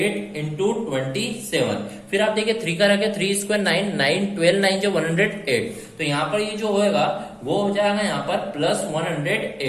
इंटू 27। फिर आप देखिए 3 का रखे, 3 स्क्वायर 9 9 12 9 जो 108, तो यहाँ पर ये जो होएगा वो हो जाएगा यहाँ पर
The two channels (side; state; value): both; identical; correlation 1.00